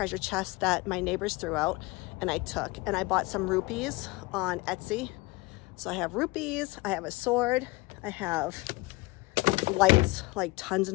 chests that my neighbors threw out and I took. And I bought some rupees on Etsy. So I have rupees, I have a sword, I have lights, like tons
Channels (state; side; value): quieter; right; 23.3 dB